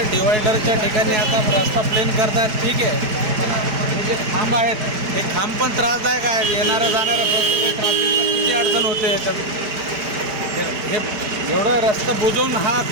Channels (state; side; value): late; left; 4.8 ms